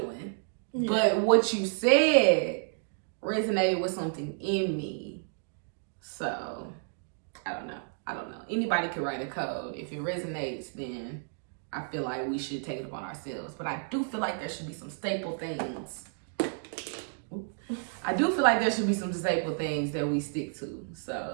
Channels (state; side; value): silent; left; digital silence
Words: but what you said resonated with something in me. So I don't know. Anybody can write a code. If it resonates, then I feel like we should take it upon ourselves. But I do feel like there should be some staple things. That we stick to.